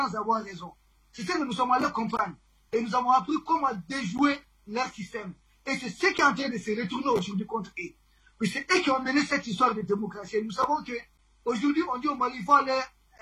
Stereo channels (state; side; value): identical; both; correlation 1.00